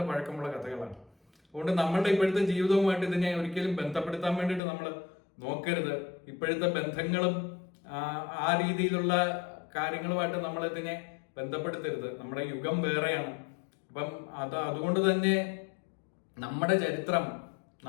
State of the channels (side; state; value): right; drops out; at 4.6 s